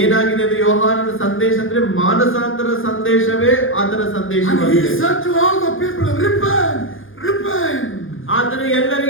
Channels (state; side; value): late; right; 0.58 ms